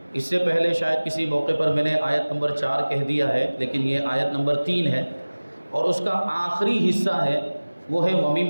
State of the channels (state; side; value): inverted; both; correlation -1.00